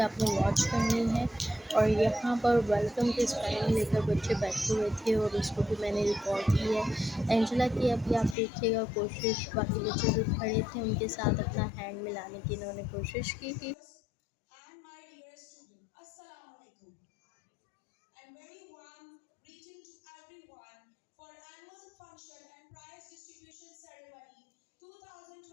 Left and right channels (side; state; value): right; drops out; at 8.3 s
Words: वॉच करनी है। और यहाँ पर वेलकम के स्पेलिंग लेकर बच्चे बैठे हुए थे और उसको भी मैंने रिकॉर्ड किया है। एंजेला की अभी आप देखिएगा कोशिश, बाकी बच्चे जो खड़े थे उनके साथ अपना हैंड मिलाने की इन्होंने कोशिश की थी। And my dear student, Assalamu alaikum. And very warm greeting to everyone for annual function and prize distribution ceremony